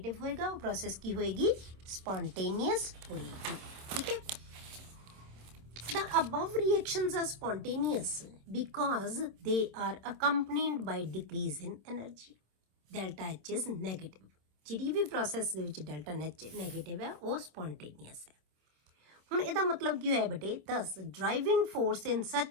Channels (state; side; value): late; left; 26 ms